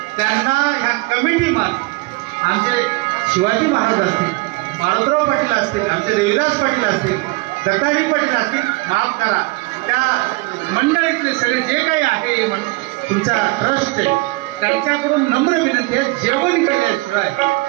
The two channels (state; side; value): quieter; left; 24.0 dB